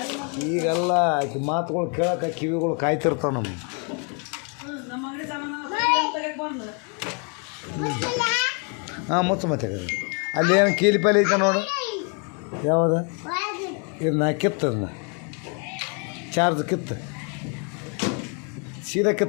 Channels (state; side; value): quieter; right; 36.8 dB